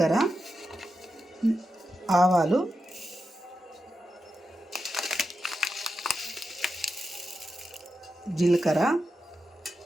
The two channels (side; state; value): both; normal; correlation 0.88